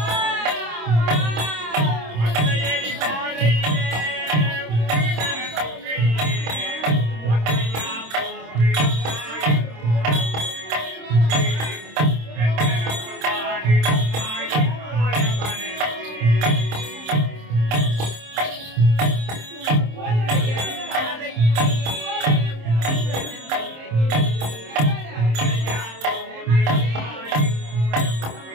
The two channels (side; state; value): left; late; 26 ms